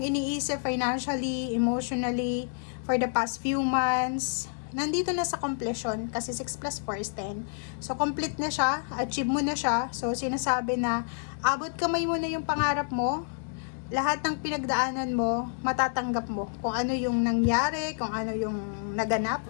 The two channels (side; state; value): right; silent; digital silence